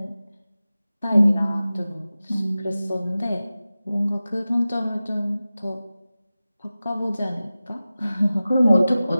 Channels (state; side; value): inverted; both; correlation -0.96